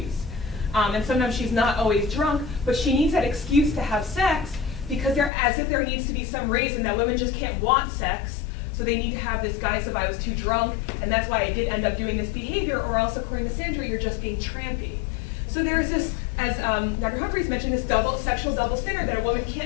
And sometimes she's not always drunk, but she needs that excuse to have sex because as if there needs to be some reason that women just can't want sex, so they need to have this guise of I was too drunk, and that's why I did end up doing this behavior, or else, according to Sandra, you're just being trampy. So there's this, as Dr. Humphreys mentioned, this sexual double standard that a woman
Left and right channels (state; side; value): drops out; right; at 5.3 s